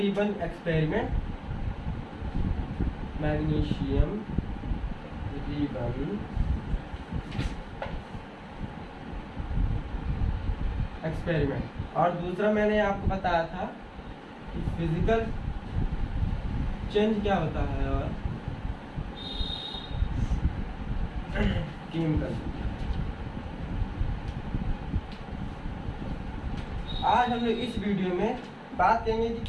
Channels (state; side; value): identical; both; correlation 1.00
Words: experiment, magnesium ribbon experiment, और दूसरा मैंने आपको बताया था कि फिजिकल चेंज क्या होता है और केमिकल। आज हम लोग इस वीडियो में बात करेंगे